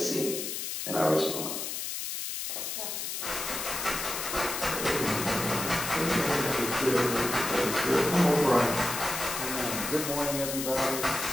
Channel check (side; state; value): left; noise; hiss, 4 dB below the sound